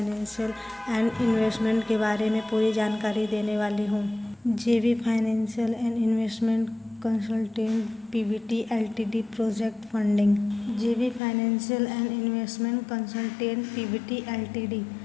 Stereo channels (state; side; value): drops out; right; at 11.2 s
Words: एंड इन्वेस्टमेंट के बारे में पूरी जानकारी देने वाली हूँ। JV financial and investment consultant PVT LTD project funding. JV financial and investment consultant PVT LTD,